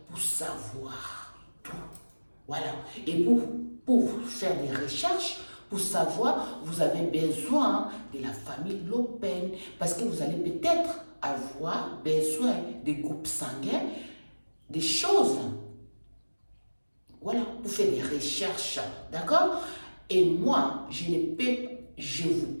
pour savoir tout. Voilà. Et pour faire des recherches, pour savoir, vous avez besoin de la famille Le Pen. Parce que vous allez peut-être avoir besoin des groupes sanguins, des choses. Voilà, pour faire des recherches, d'accord? Et moi, je vous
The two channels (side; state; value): both; inverted; correlation -1.00